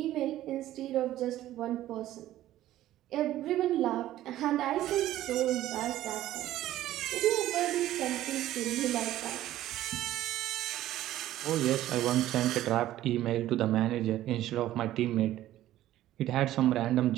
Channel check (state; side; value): quieter; left; 13.9 dB